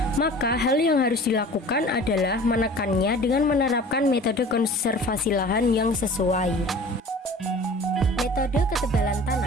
maka hal yang harus dilakukan adalah menekannya dengan menerapkan metode konservasi lahan yang sesuai. Metode ketebalan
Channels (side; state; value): both; normal; correlation 0.43